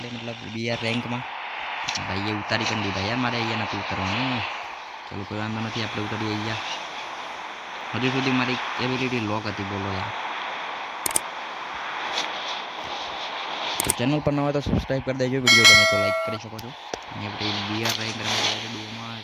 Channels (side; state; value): both; identical; correlation 1.00